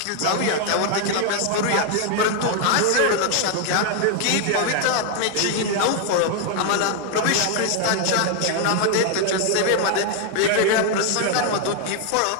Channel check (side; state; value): both; different; correlation 0.00